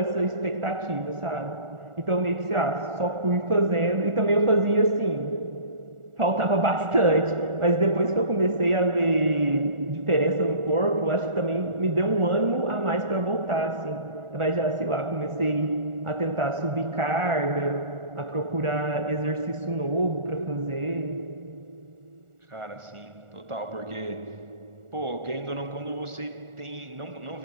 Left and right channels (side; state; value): left; late; 1.4 ms